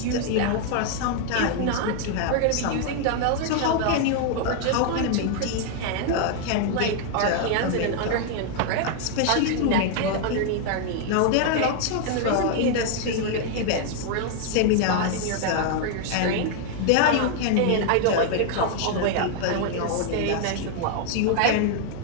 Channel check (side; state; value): both; different; correlation 0.00